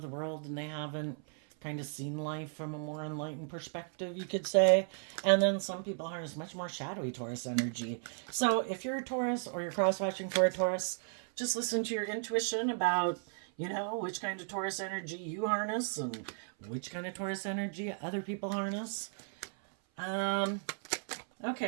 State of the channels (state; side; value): silent; left; 54 dB below the other